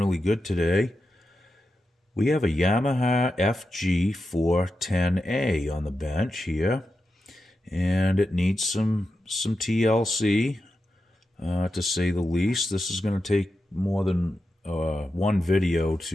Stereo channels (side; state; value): both; normal; correlation 0.89